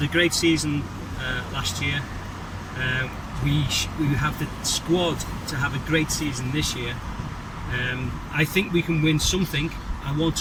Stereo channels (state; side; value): identical; both; correlation 1.00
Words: a great season last year. We have the squad to have a great season this year. I think we can win something. I